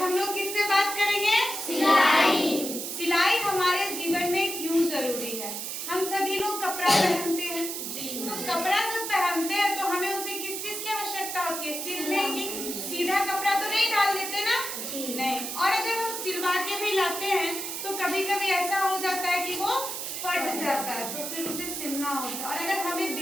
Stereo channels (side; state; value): right; noise; hiss, 5 dB below the sound